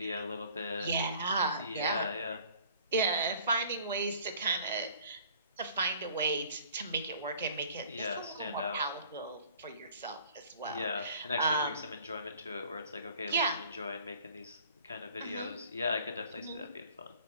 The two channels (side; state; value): both; inverted; correlation -0.53